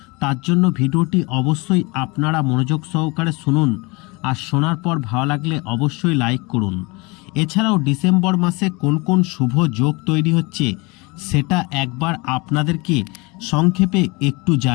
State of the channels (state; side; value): quieter; right; 26.6 dB